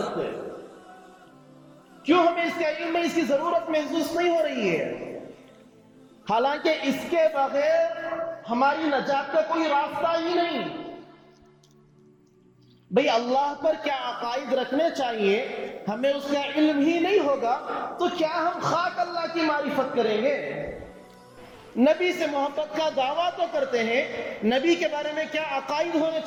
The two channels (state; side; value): identical; both; correlation 1.00